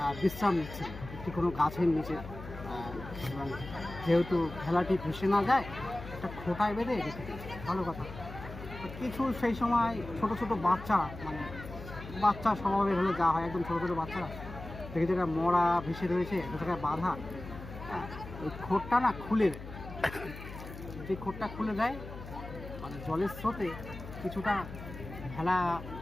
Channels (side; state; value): left; noise; hum, 12 dB below the sound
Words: বিশ্রাম নিচ্ছেন একটি কোনো গাছের নিচে, এবং যেহেতু ভেলাটি ভেসে না যায় একটা খোঁটায় বেঁধে রেখে দিয়েছে, ভালো কথা। কিছু সেই সময় ছোট ছোট বাচ্চা, মানে বাচ্চা স্বভাবের হলে যা হয়, একদম ছোটো ছোটো বাচ্চারা দেখে যেটা মরা ভেসে রয়েছে, একটা জায়গায় বাঁধা, ওই খোঁটটা না খুলে দেয়। যে খোঁটটা খুলে দেয় মানে জলের স্রোতে কিছুটা ভেলা